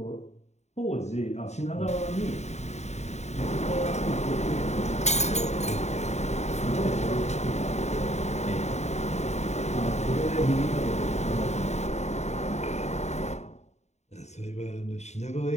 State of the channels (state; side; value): late; right; 0.32 ms